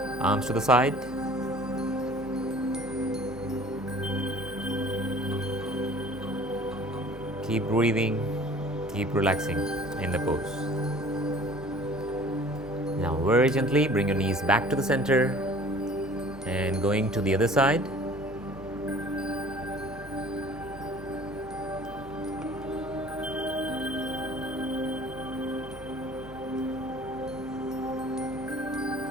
Arms to the side. Keep breathing, keep relaxing in the pose. Now very gently bring your knees back to the center and going to the other side.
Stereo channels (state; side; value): normal; both; correlation 0.48